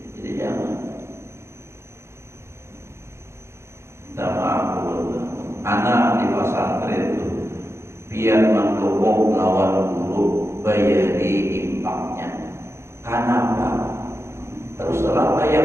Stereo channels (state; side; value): late; left; 0.13 ms